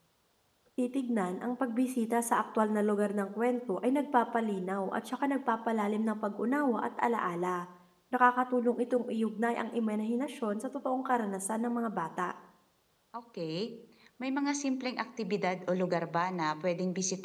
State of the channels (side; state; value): both; identical; correlation 1.00